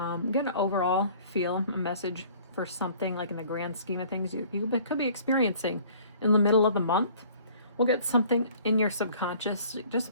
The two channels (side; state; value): both; inverted; correlation -0.53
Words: Get an overall feel, a message for something like in the grand scheme of things you could be experiencing in the middle of the month. We'll get something in your subconscious,